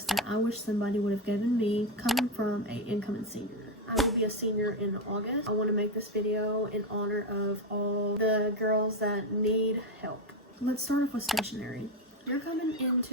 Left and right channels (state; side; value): normal; both; correlation 0.11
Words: that I wish somebody would have given me coming from an incoming senior. I will be a senior in August. I want to make this video in honor of all the girls that need help. Let's start off with stationery. You're coming